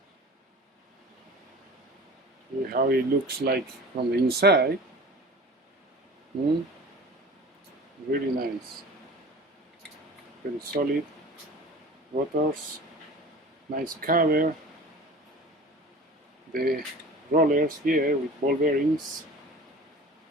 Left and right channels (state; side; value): normal; both; correlation 0.40